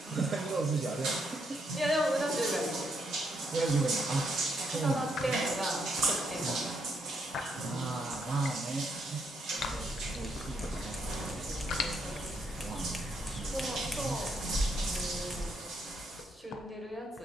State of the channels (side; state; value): both; normal; correlation 0.76